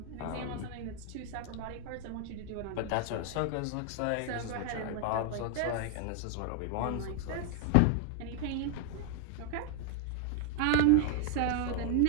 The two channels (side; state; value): both; different; correlation 0.00